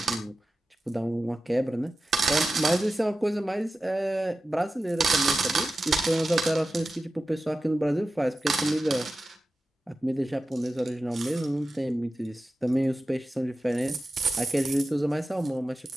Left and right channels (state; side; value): normal; both; correlation 0.94